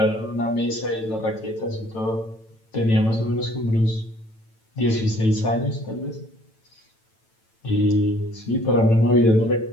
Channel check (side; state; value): right; late; 9.0 ms